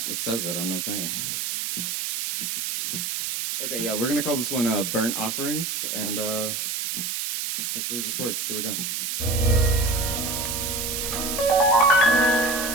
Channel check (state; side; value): noise; right; hiss, 2 dB below the sound